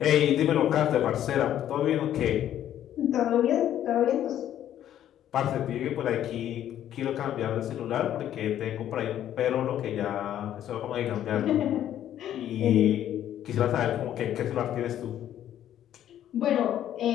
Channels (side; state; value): right; quieter; 11.2 dB